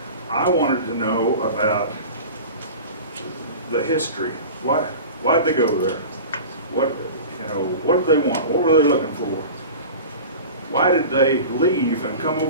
I wanted to know about the history. Why'd they go there? What did they want? What were they looking for? Why did they leave and come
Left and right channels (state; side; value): inverted; both; correlation -0.35